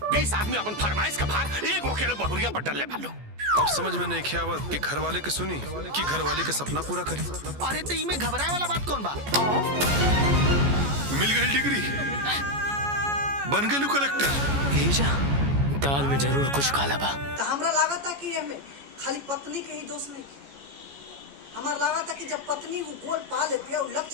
20 आदमी अपन फरमाइश के भार एक अकेले बहुरिया पर डलले भालो। अब समझ में नहीं खियावत कि घर वाले के सुनी कि घर वाले के सपना पूरा करी। अरे तो इमे घबराए वाला बात कौन बा? मिल गई डिग्री, बन गई कलेक्टर। दाल में जरूर कुछ काला बा। तो हमरा लागत कि एमे खाली पत्नी के ही दोष नहीं। हमार लागत कि जब पत्नी वो गोल पा लेती है, वो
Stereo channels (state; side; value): late; left; 14 ms